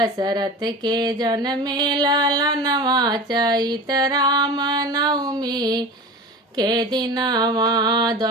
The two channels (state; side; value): normal; both; correlation 0.32